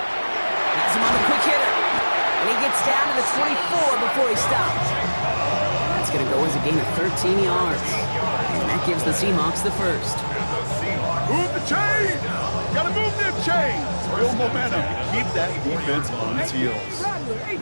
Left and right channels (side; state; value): both; inverted; correlation -1.00